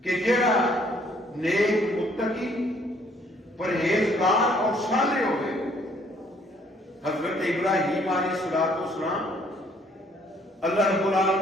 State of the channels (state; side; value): normal; both; correlation 0.63